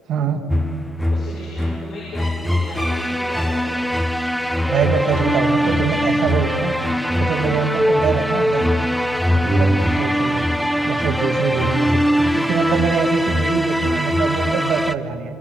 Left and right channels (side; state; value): both; normal; correlation 0.85